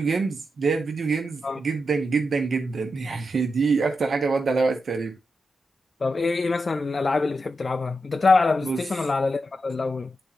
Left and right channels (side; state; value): both; normal; correlation 0.87